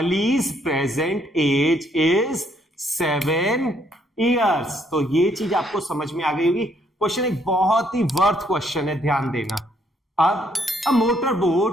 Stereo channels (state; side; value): normal; both; correlation 0.70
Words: present age is 7 years. तो ये चीज आपको समझ में आ गई होगी. क्वेश्चन एक बहुत ही वर्थ क्वेश्चन है, ध्यान देना. अब अ motor